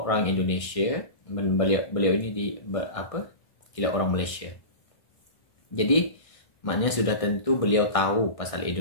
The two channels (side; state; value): right; late; 1.6 ms